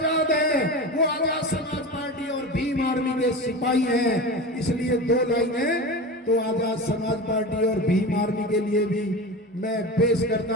है, वो आजाद समाज पार्टी और भीम आर्मी के सिपाही हैं। इसलिए दो लाइनें तो आजाद समाज पार्टी और भीम आर्मी के लिए भी मैं पेश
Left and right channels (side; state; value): both; normal; correlation 0.28